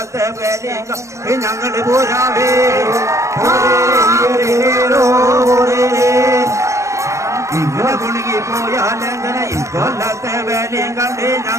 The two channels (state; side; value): late; left; 0.15 ms